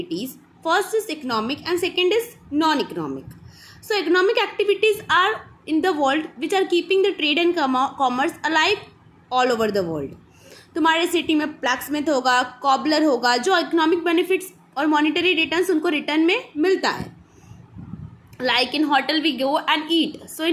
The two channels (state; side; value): identical; both; correlation 1.00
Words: First is economic and second is non-economic. So, economic activities are in the world which are keeping the trade and commerce alive all over the world. तुम्हारे city में blacksmith होगा, cobbler होगा, जो economic benefits और monetary returns उनको return में मिलता है. Like in hotel we go and eat, so